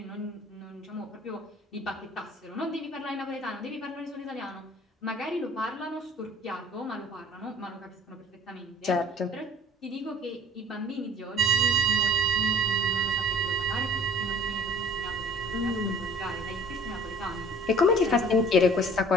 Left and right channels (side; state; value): both; normal; correlation 0.49